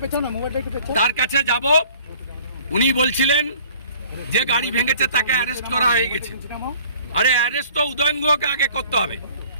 তার কাছে যাব, উনি বলছিলেন যে গাড়ি ভেঙেছে তাকে অ্যারেস্ট করা হয়ে গেছে। আরে অ্যারেস্ট তো উদয়ন গুহকে আগে করতে হবে।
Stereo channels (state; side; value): inverted; both; correlation -0.52